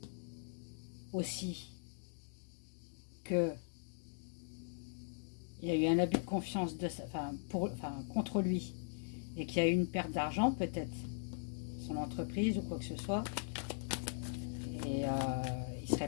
aussi que il y a eu un abus de confiance contre lui et qu'il y a eu une perte d'argent, peut-être, son entreprise ou quoi que ce soit, et il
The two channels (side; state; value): right; silent; digital silence